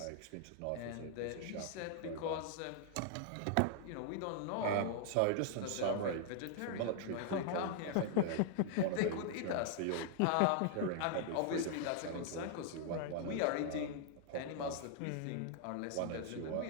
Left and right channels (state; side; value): different; both; correlation -0.01